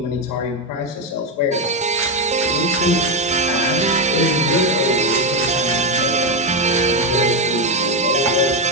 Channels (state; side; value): normal; both; correlation 0.08